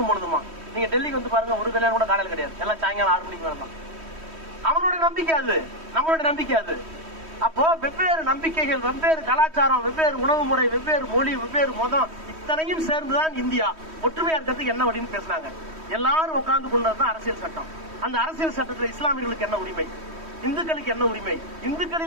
போனதுமா. நீங்க டெல்லிக்கு வந்து பாருங்க, ஒரு கல்யாணம் கூட காலையில் கிடையாது. எல்லாம் சாயங்காலம் 6 மணிக்கு வேண்டாம். அவனோட நம்பிக்கை அது, நம்மளோட நம்பிக்கை அது. அப்போ வெவ்வேறு நம்பிக்கைகள், வெவ்வேறு கலாச்சாரம், வெவ்வேறு உணவு முறை, வெவ்வேறு மொழி, வெவ்வேறு மதம், இத்தனையும் சேர்ந்துதான் இந்தியா. ஒற்றுமையா இருக்கிறதுக்கு என்ன வழின்னு பேசினாங்க. எல்லாரும் உட்கார்ந்து கொண்டதுதான் அரசியல் சட்டம். அந்த அரசியல் சட்டத்தில் இஸ்லாமியர்களுக்கு என்ன உரிமை, இந்துக்களுக்கு என்ன உரிமை,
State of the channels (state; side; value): late; left; 3.1 ms